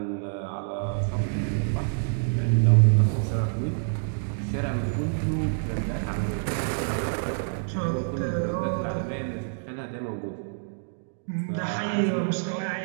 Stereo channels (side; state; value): left; silent; digital silence